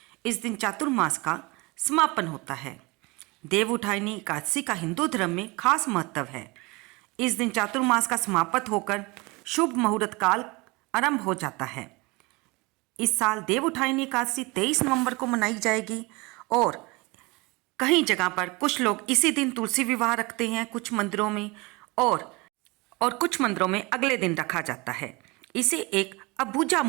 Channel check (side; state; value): left; quieter; 25.2 dB